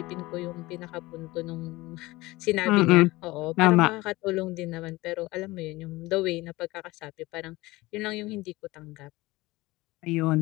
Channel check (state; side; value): quieter; right; 20.4 dB